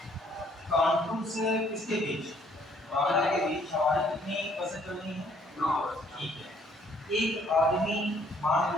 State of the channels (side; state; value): both; normal; correlation 0.63